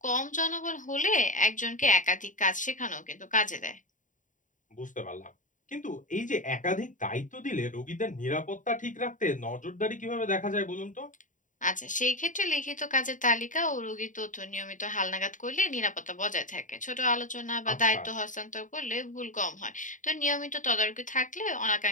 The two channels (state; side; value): late; right; 0.37 ms